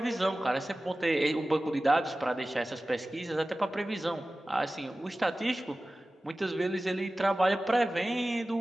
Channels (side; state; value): both; normal; correlation 0.96